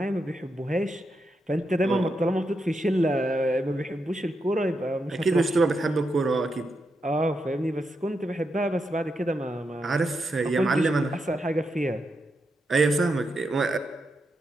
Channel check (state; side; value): normal; both; correlation 0.84